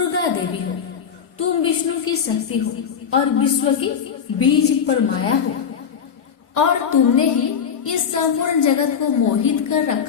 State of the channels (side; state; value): right; quieter; 7.3 dB